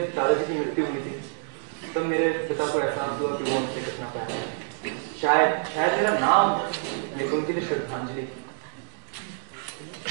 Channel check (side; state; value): left; silent; digital silence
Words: दादाजी की मृत्यु हुई थी तब मेरे पिता को एहसास हुआ कि वो उनसे कितना प्यार है। शायद मेरा नाम उनके लिए श्रद्धांजलि।